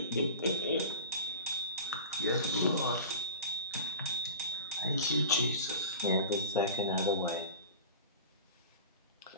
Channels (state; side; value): inverted; both; correlation -0.33